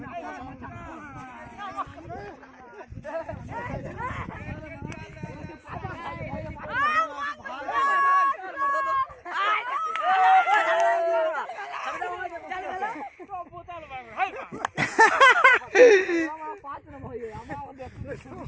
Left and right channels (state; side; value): identical; both; correlation 1.00